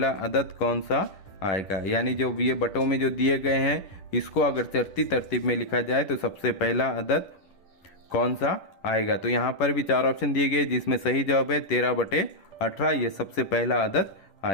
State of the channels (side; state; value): right; late; 10 ms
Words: अदद कौन सा आएगा। यानी जो ये बटों में जो दिए गए हैं इसको अगर चढ़ती तरतीब में लिखा जाए तो सबसे पहला अदद कौन सा आएगा। तो यहाँ पर भी 4 ऑप्शन दिए गए जिसमें सही जवाब है 13/18, ये सबसे पहला अदद